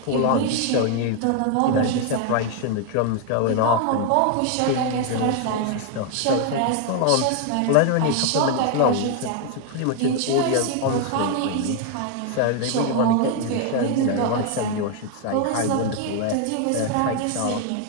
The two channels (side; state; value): both; different; correlation 0.01